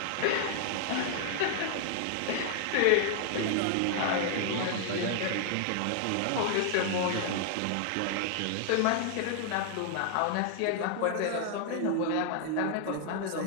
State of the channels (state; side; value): different; both; correlation 0.00